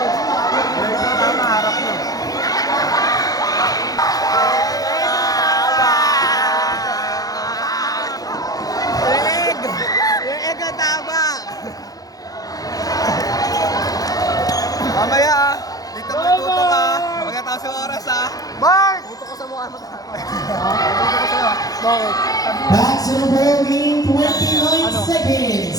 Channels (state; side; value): late; right; 0.18 ms